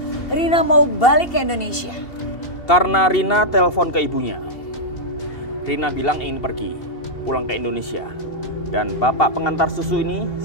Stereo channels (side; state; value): right; late; 2.7 ms